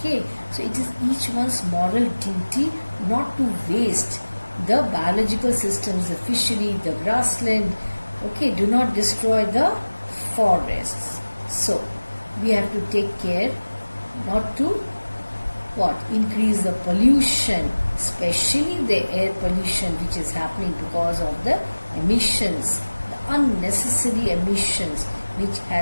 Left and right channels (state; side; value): inverted; both; correlation -1.00